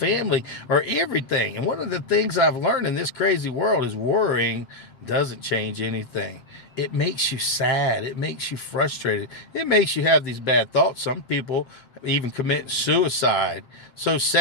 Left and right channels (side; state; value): right; late; 7.7 ms